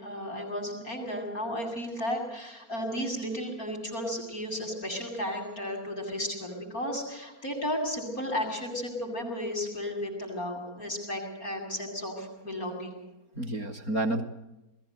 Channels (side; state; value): right; late; 4.3 ms